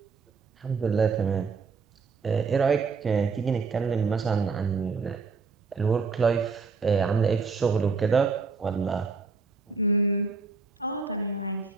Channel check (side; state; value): left; quieter; 4.7 dB